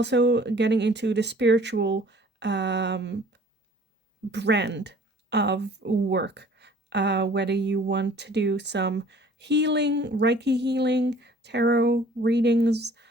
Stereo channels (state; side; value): normal; both; correlation 0.52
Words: getting into the spiritual brand of work, whether you want to do some healing, Reiki healing, tarot readings,